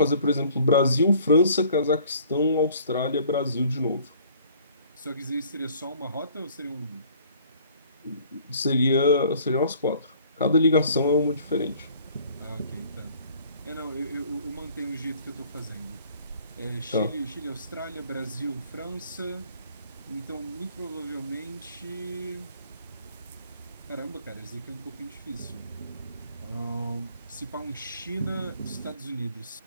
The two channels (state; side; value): inverted; both; correlation -0.55